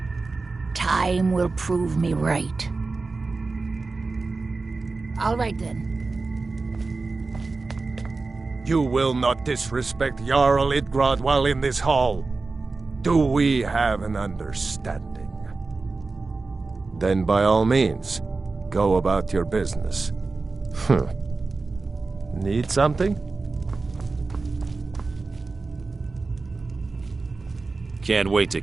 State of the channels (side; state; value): left; quieter; 3.8 dB